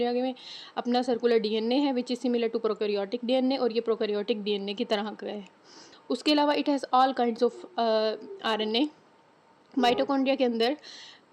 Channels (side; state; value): both; identical; correlation 1.00